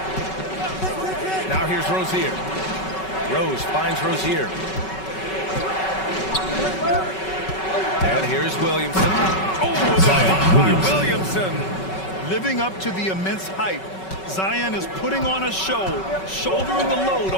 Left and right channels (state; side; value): late; right; 5.3 ms